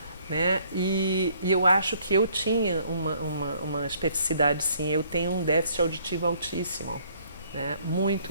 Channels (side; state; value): both; inverted; correlation -0.63